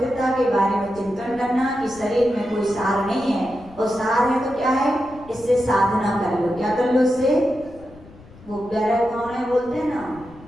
के बारे में चिंतन करना कि शरीर में कोई सार नहीं है और सार है तो क्या है? इससे साधना कर लो। क्या कर लो इससे? वो प्यारा भावना बोलते हैं ना,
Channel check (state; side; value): noise; left; rumble, 21 dB below the sound